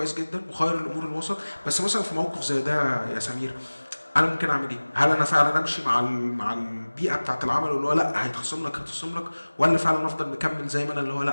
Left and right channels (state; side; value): inverted; both; correlation -1.00